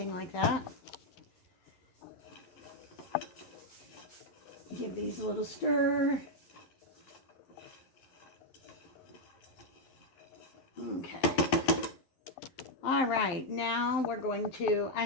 like that. Give these a little stir. Okay. All right, now we're going to, I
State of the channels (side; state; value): right; late; 11 ms